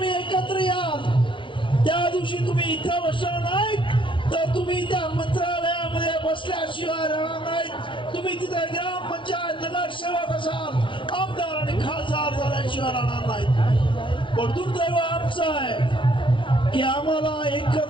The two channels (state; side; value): late; right; 0.25 ms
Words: एकत्र याल त्या दिवशी तुम्ही इथं बसणार नाहीत तर तुम्ही त्या मंत्रालयामध्ये बसल्याशिवाय राहणार नाहीत. तुम्ही तिथे ग्रामपंचायत नगरसेवक असाल, आमदार आणि खासदार झाल्याशिवाय राहणार नाहीत. पण दुर्दैव आमचं आहे की आम्हाला